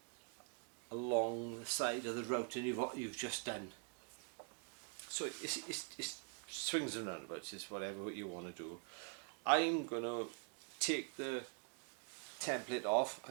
along the side of the routing you've just done. So it's swings and roundabouts, it's whatever you want to do. I'm going to take the template off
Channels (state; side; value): quieter; left; 37.9 dB